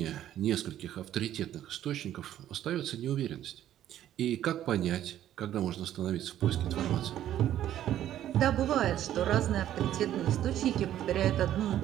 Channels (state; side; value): quieter; left; 11.9 dB